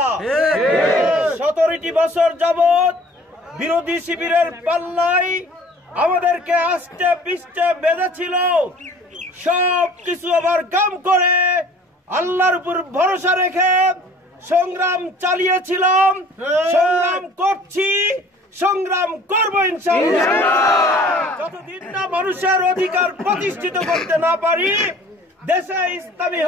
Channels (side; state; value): both; normal; correlation 0.50